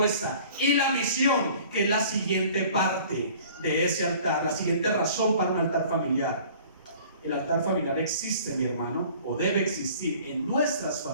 Y la misión, que es la siguiente parte de ese altar, la siguiente razón para un altar familiar. El altar familiar existe, mi hermano, o debe existir en nuestras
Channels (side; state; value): both; inverted; correlation -0.49